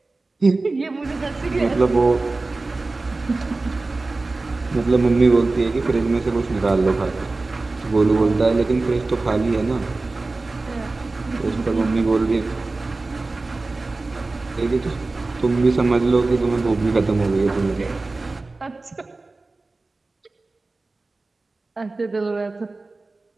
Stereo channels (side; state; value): left; quieter; 3.4 dB